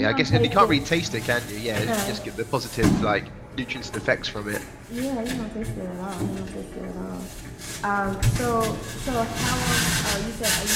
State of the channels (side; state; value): both; identical; correlation 1.00